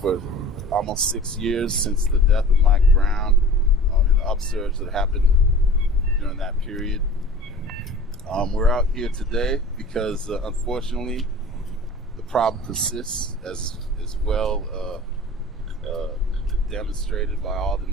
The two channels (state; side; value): normal; both; correlation 0.41